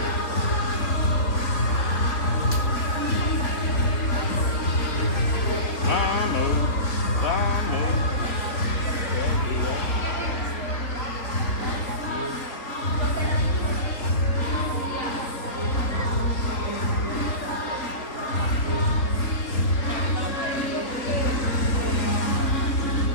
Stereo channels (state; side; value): late; right; 3.9 ms